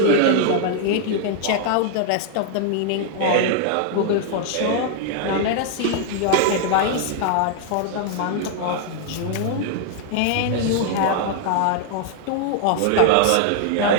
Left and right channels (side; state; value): both; different; correlation 0.00